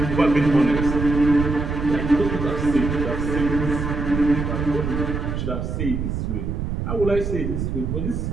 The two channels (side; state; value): right; noise; rumble, 3 dB below the sound